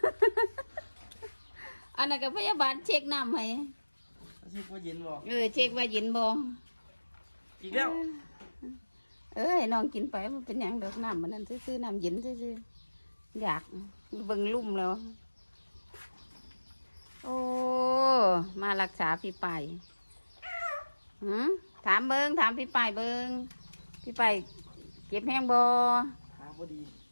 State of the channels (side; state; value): both; inverted; correlation -1.00